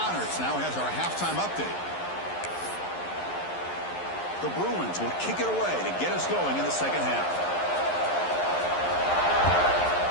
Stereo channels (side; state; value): right; late; 11 ms